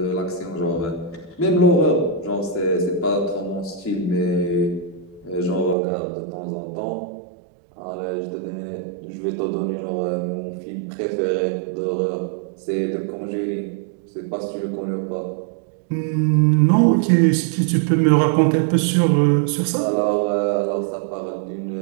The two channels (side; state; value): left; drops out; at 5.8 s